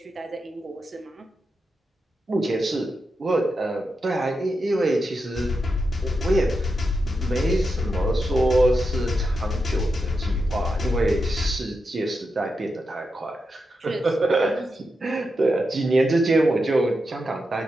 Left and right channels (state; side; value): normal; both; correlation 0.87